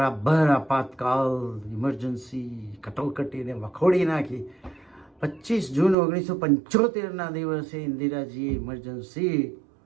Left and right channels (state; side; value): drops out; left; at 6.0 s